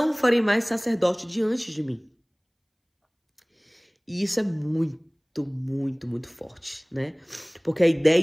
farei mais sacerdote diante de mim. E isso é muito, muito, muito forte, né? Porque a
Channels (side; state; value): both; identical; correlation 1.00